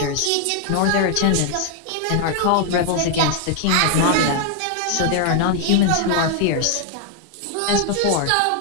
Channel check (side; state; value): both; different; correlation 0.00